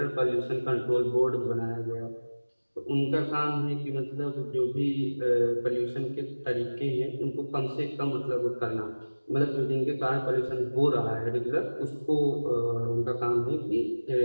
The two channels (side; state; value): both; inverted; correlation -1.00